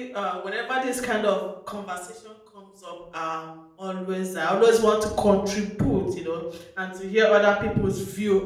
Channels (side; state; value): both; identical; correlation 1.00